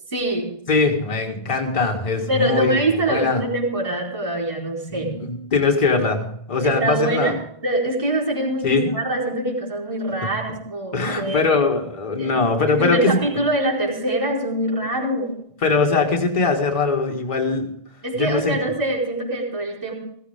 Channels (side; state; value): right; late; 1.5 ms